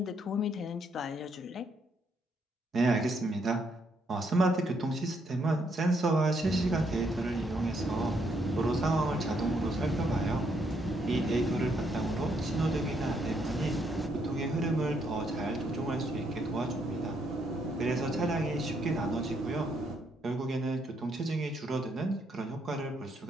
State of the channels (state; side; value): normal; both; correlation 0.74